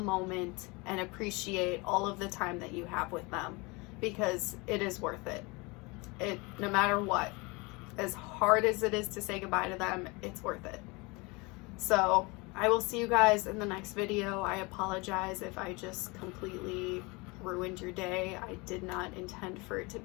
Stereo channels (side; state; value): right; quieter; 26.4 dB